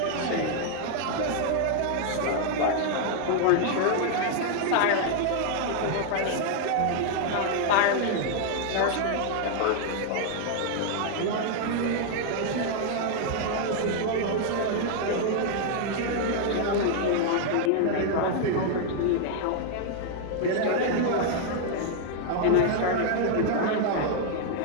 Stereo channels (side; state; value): both; different; correlation 0.00